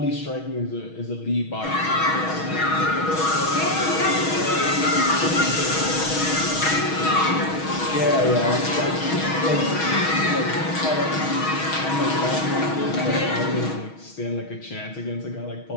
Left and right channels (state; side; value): late; right; 6.3 ms